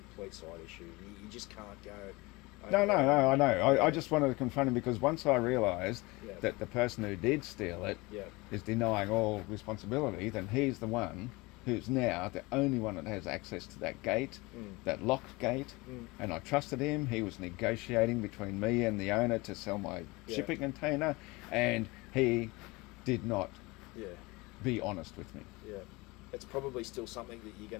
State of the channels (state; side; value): quieter; right; 23.7 dB